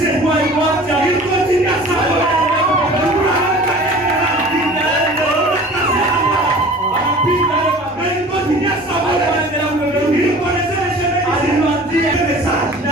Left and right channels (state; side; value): normal; both; correlation 0.44